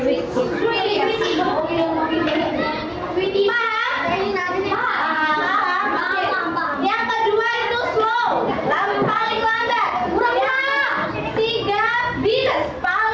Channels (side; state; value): both; identical; correlation 1.00